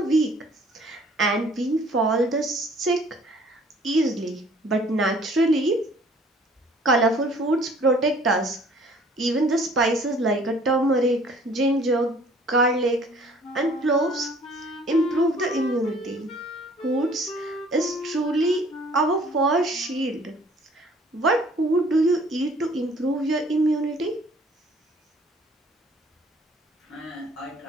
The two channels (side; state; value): both; normal; correlation 0.55